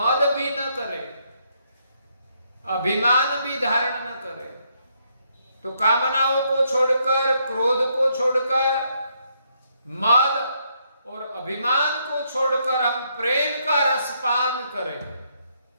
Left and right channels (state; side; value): inverted; both; correlation -0.74